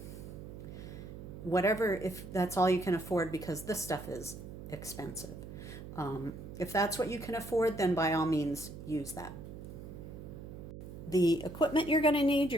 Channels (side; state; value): right; noise; hum, 11 dB below the sound